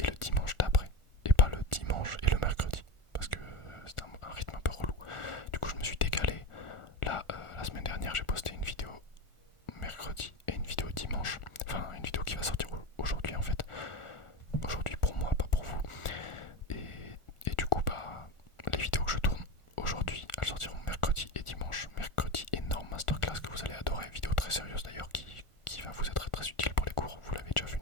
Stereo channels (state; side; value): late; right; 1.4 ms